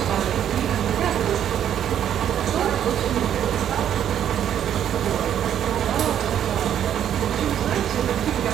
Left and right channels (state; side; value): quieter; left; 9.9 dB